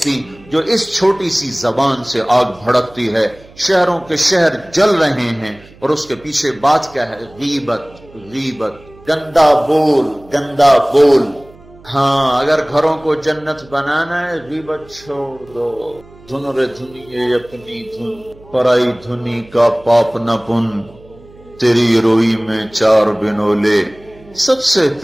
جو اس چھوٹی سی زبان سے آگ بھڑکتی ہے۔ شہروں کے شہر جل رہے ہیں اور اس کے پیچھے بات کیا ہے؟ غیبت، غیبت، گندا بول، گندا بول۔ ہاں، اگر گھروں کو جنت بنانا ہے غیبت چھوڑ دو۔ دھن رے دھنیے اپنی دھن، پرائی دھنی کا پاپ نہ پن، تیری روئی میں 4 بنولے، سب سے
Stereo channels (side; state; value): right; noise; hum, 24 dB below the sound